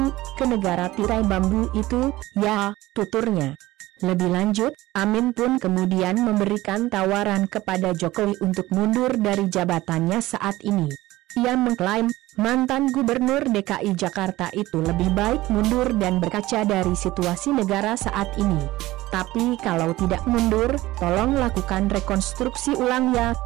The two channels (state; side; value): quieter; left; 17.6 dB